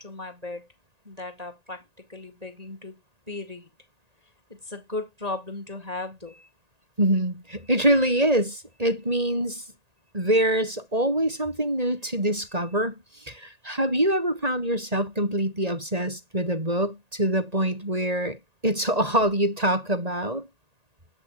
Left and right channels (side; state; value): left; late; 1.8 ms